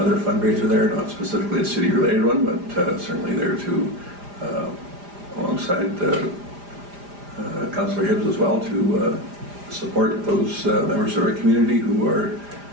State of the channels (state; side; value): late; left; 4.9 ms